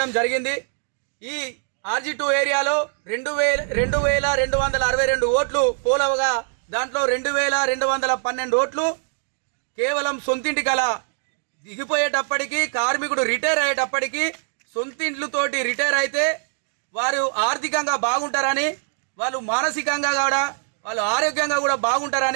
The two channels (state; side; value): silent; left; digital silence